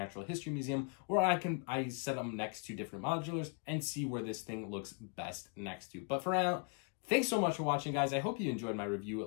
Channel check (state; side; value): quieter; right; 39.5 dB